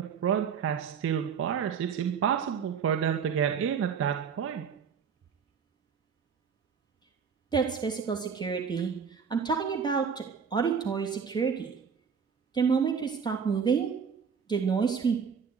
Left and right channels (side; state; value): left; quieter; 6.6 dB